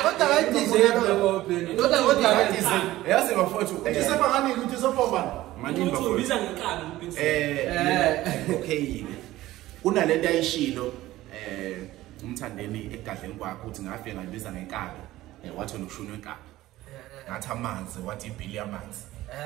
kodwa bayidizele ngobheni kodwa bayidizele yazi bafowethu uthi sebangani ukuthi sobobani manini Uthi bafowethu ubiza ngenkani uBiggs. okay kunalento ayishilo umthandeni egadleni kwakhe uthi ngafike ngayibiza ngenkabi wathi nokushuna wenkabi ngathi amanzi wathi ibhili yamanzi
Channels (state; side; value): quieter; left; 16.2 dB